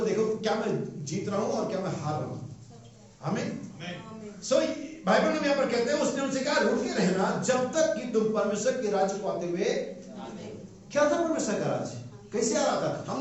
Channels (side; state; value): both; identical; correlation 1.00